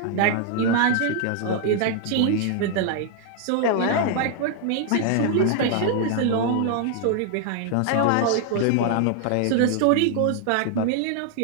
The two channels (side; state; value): both; different; correlation 0.00